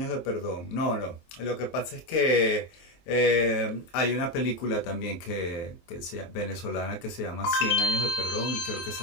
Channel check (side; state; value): right; late; 23 ms